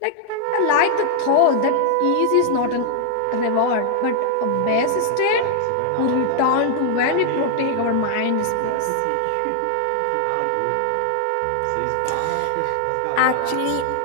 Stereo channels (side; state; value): both; different; correlation 0.00